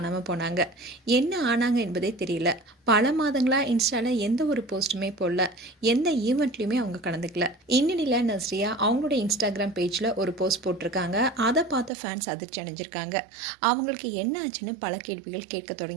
போனாங்க. என்ன ஆனாங்க என்பதே தெரியல. பல மாதங்களா இன்ஸ்டால எந்த ஒரு போஸ்ட்டுமே போடல, எந்த ஈவெண்ட்லையுமே அவங்க கலந்துக்கல. இந்நிலையில் நஸ்ரியா அவங்களோட இன்ஸ்டாகிராம் பேஜில் ஒரு போஸ்ட் போட்டிருக்காங்க. அதை பார்த்த ஃபேன்ஸ் அதிர்ச்சி அடைஞ்சிருக்காங்க. அவங்களுக்கு என்ன ஆச்சுன்னு பல கேள்விகள் கேட்க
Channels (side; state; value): left; drops out; at 11.9 s